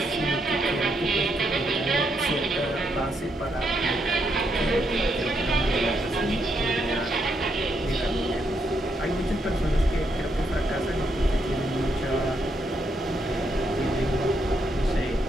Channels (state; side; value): normal; both; correlation 0.78